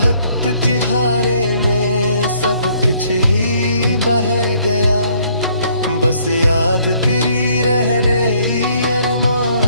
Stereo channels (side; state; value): both; inverted; correlation -0.65